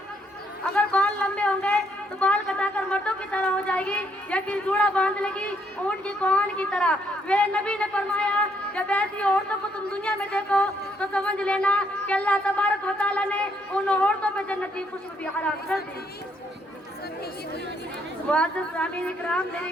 अगर बाल लंबे होंगे तो बाल कटाकर मर्दों की तरह हो जाएगी, या फिर जूड़ा बांध लेगी ऊँट की कोहन की तरह। मेरे नबी ने फरमाया, जब ऐसी औरतों को तुम दुनिया में देखो तो समझ लेना कि अल्लाह तबारक व तआला ने उन औरतों पर जन्नत की खुशबू भी हराम कर दी। मुअज़्ज़िज़ सामीन इकराम, मेरी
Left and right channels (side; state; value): both; normal; correlation 0.72